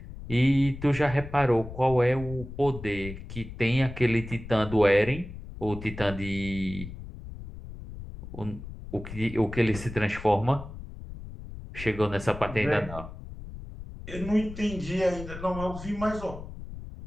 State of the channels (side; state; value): left; noise; rumble, 12 dB below the sound